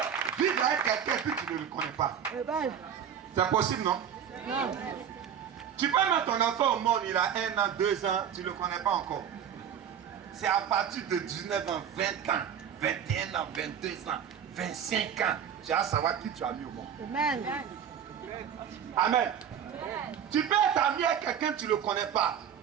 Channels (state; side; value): quieter; left; 8.5 dB